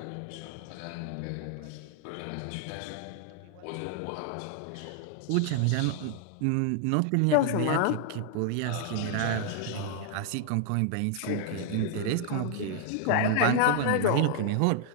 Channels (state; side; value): different; both; correlation -0.01